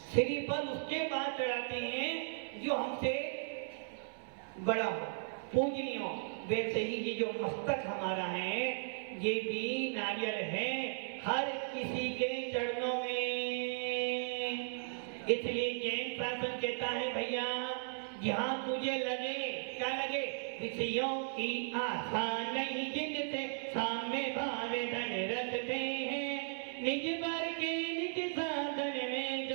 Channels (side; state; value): left; silent; 53 dB below the other